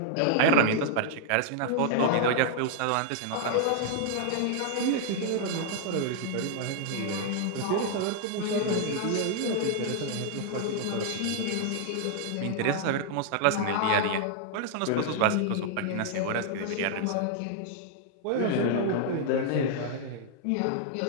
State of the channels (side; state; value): both; different; correlation 0.00